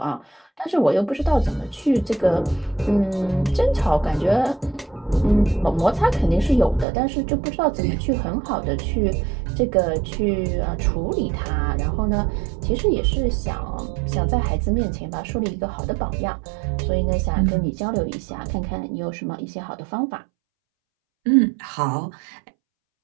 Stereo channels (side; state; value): left; drops out; at 6.9 s